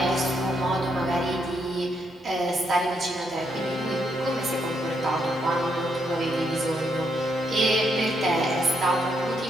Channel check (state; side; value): normal; both; correlation 0.77